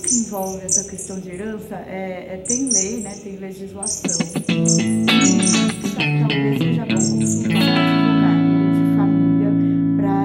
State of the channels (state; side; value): identical; both; correlation 1.00